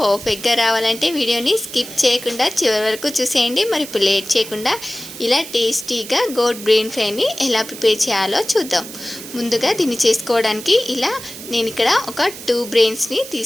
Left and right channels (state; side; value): noise; right; hiss, 13 dB below the sound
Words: రావాలంటే వీడియోని స్కిప్ చేయకుండా చివరి వరకు చూసేయండి. మరి ఇప్పుడు లేట్ చేయకుండా ఇలా టేస్టీగా గోట్ బ్రెయిన్ ఫ్రైని ఎలా ప్రిపేర్ చేయాలో చూద్దాం. ముందుగా దీన్ని చేసుకోవడానికి ఇలా నేను ఇక్కడ ఒక 2 బ్రెయిన్స్ని